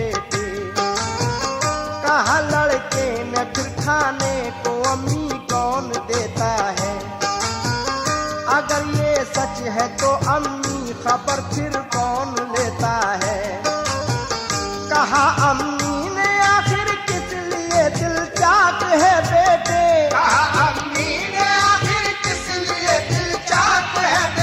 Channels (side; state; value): both; identical; correlation 1.00